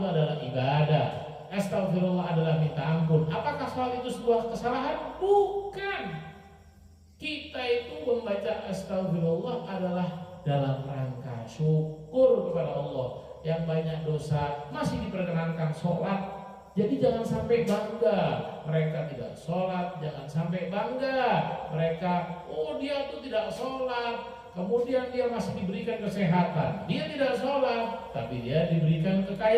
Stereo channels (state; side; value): identical; both; correlation 1.00